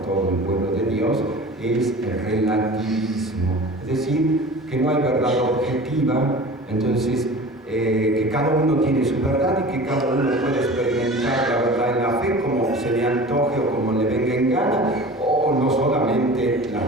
todo el pueblo de Dios, es el relativismo. Es decir, que no hay verdad objetiva, entonces que cada uno tiene su verdad y que cada uno puede experimentar la verdad en la fe como se le antoje o como le venga en gana, o no solamente la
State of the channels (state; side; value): normal; both; correlation 0.38